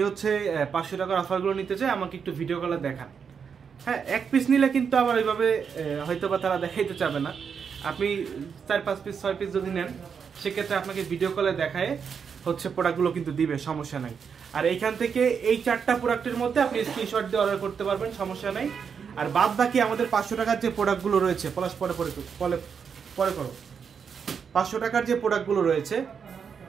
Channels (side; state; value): left; quieter; 6.6 dB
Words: হচ্ছে 500 টাকার অফারগুলো নিতে চাই, আমাকে একটু ভিডিও কলে দেখান। হ্যাঁ, এক পিস নিলে কিন্তু আবার ওইভাবে হয়তো বা তারা দেখাইতে চাবে না। আপনি 4-5 পিস 6 পিস যদি নেন, সেক্ষেত্রে আপনাকে ভিডিও কলে দেখায় হচ্ছে প্রোডাক্টগুলো কিন্তু দিবে, সমস্যা নাই। আর এইখান থেকে এই 4টা প্রোডাক্টের মধ্যে আপনি স্ক্রিনশট দিয়ে অর্ডার করতে পারবেন, সমস্যা নাই। আর বাদ বাকি আমাদের 500 টাকার যে প্রোডাক্টগুলো রয়েছে, পরে করো 500 টাকার যে প্রোডাক্টগুলো রয়েছে,